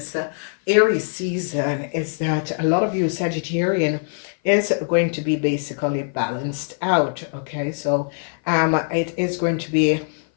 Aries season is that a lot of you Sagittarian is going to be basically balanced out. Okay, so it is going to be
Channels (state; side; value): silent; right; 56 dB below the other